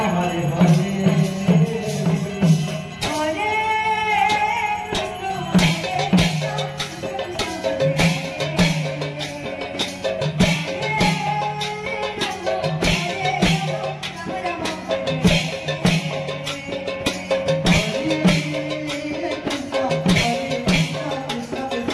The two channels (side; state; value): both; identical; correlation 1.00